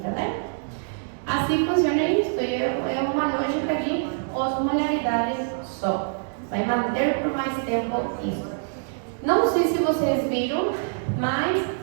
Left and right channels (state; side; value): silent; left; digital silence